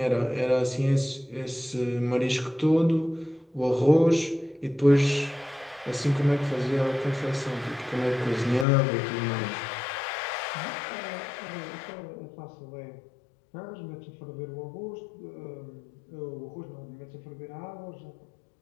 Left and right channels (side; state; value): right; drops out; at 8.7 s